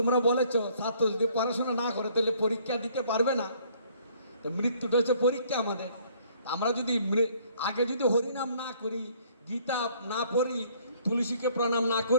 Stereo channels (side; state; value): both; inverted; correlation -0.61